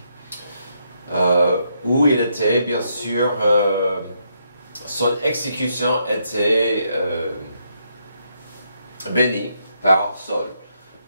où il était, bien sûr, son exécution était bénie par Saul.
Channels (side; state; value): both; inverted; correlation -0.77